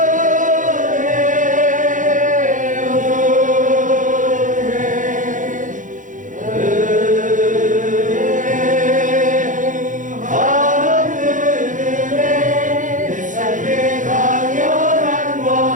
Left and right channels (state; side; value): late; left; 0.37 ms